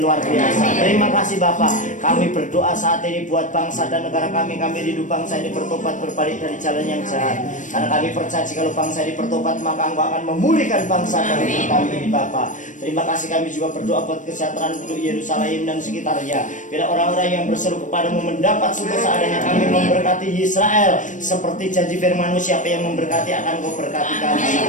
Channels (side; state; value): right; late; 0.37 ms